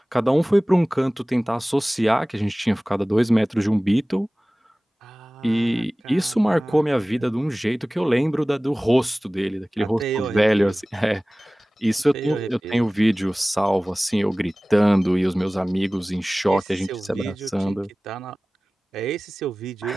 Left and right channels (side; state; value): both; normal; correlation 0.98